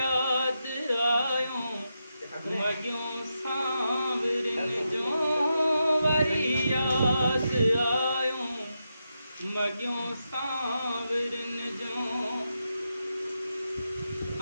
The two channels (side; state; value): both; inverted; correlation -0.86